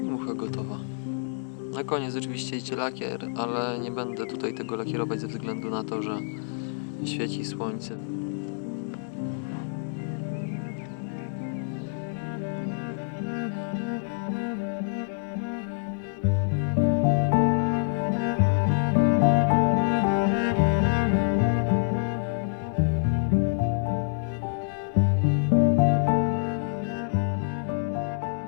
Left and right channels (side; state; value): right; silent; digital silence